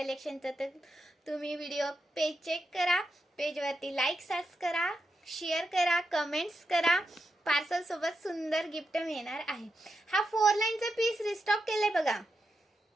तर तुम्ही व्हिडिओ पेज चेक करा, पेज वरती लाईक सर्च करा, शेअर करा, कमेंट्स करा। पार्सल सोबत सुंदर गिफ्ट मिळणार आहे। हा 4 लाईनचा पीस रिस्टॉक केलाय बघा,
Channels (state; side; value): normal; both; correlation 0.86